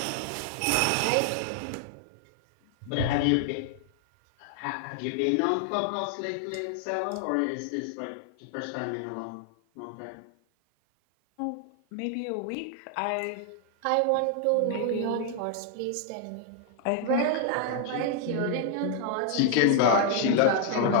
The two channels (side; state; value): both; different; correlation 0.00